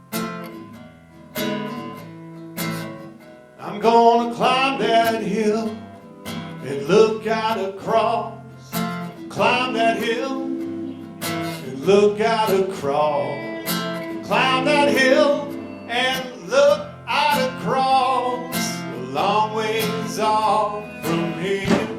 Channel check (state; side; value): identical; both; correlation 1.00